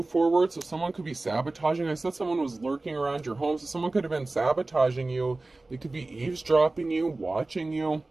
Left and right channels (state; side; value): quieter; left; 3.1 dB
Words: forward. So someone could be sabotaging. I said someone was lurking around your home, so someone could have been sabotaging you. They could be eavesdropping you, watching you.